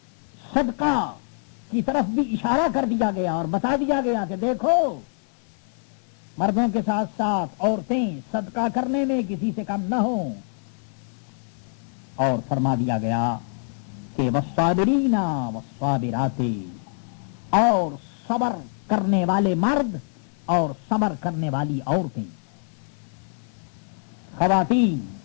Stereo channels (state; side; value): silent; right; 62 dB below the other